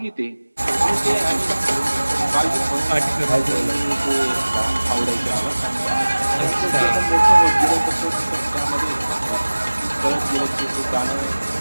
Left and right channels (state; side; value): inverted; both; correlation -1.00